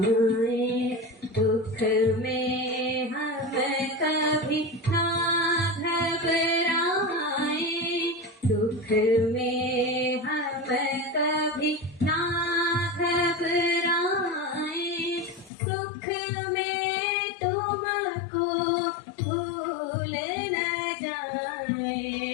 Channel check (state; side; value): drops out; right; at 15.5 s